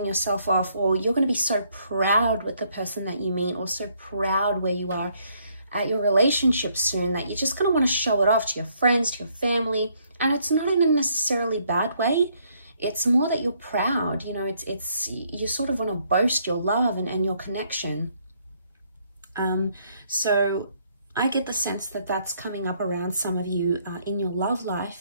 yourself off, or you're going to be so proud with the person that you meet, or so proud where you are at your relationship soon, that you're just going to want to show it off to your friends, to your family. And it's not in a necessarily bad way. It's more that you're proud, you know, it's you sort of want to boast your love and your connection. So I get the sense that that's coming up around some of you in your love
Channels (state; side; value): inverted; both; correlation -0.69